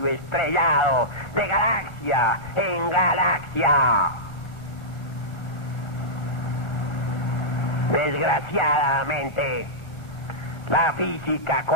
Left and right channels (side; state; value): right; late; 1.4 ms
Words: estrellado, de galaxia en galaxia. Desgraciadamente, la física